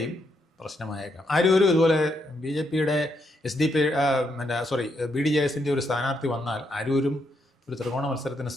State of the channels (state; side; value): normal; both; correlation 0.78